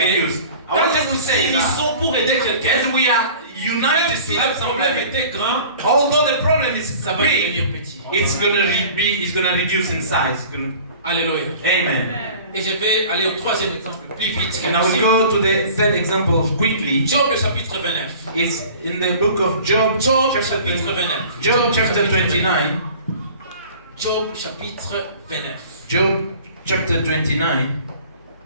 reduce. I quand want just to nous say ils that sont pour aider quelqu'un, as we are même united si to help le problème somebody, était grand, although the problem is ça va devenir big, petit. it's gonna reduce in size. Alléluia. Amen. Et je vais aller au troisième exemple plus vite. And I will go to the third example quickly. Job le chapitre 29. It's in the book of Job, Job chapter chapitre 20 29. Job chapter 29. Job chapitre 29. Job chapter 29.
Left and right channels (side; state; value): both; inverted; correlation -0.45